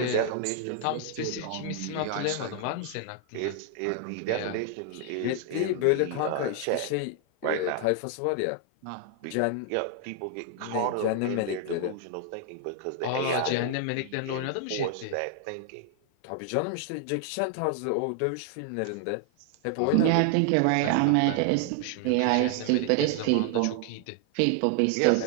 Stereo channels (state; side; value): different; both; correlation 0.00